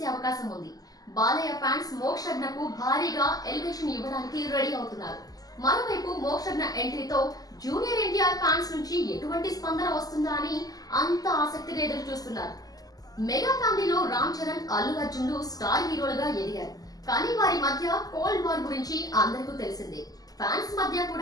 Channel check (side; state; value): right; late; 0.18 ms